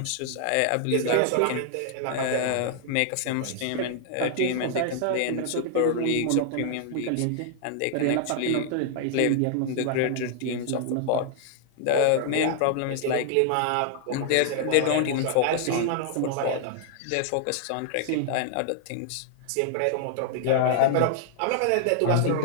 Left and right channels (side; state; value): both; different; correlation -0.01